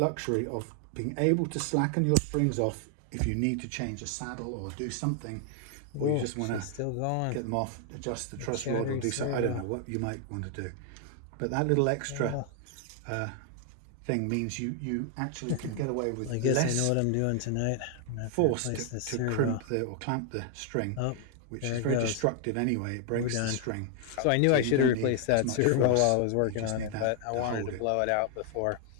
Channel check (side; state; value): both; different; correlation 0.00